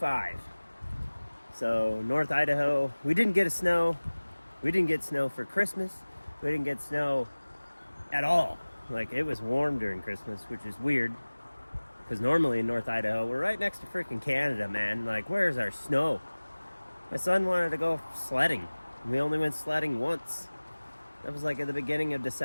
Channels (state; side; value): inverted; both; correlation -1.00